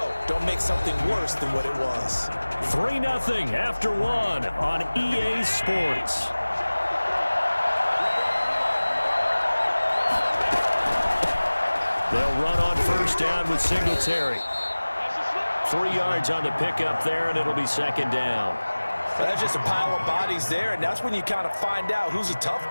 Don't make something worse than what it was. 3-0 after 1 on EA Sports. They'll run on first down with Singletary. 3 yards on the pickup there, and it'll be second down. That's just a pile of bodies there, and that's when you kind of find out who's a tough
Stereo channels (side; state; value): both; inverted; correlation -1.00